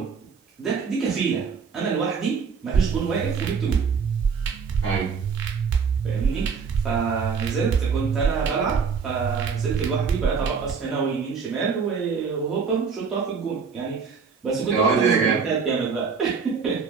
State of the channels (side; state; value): left; quieter; 5.7 dB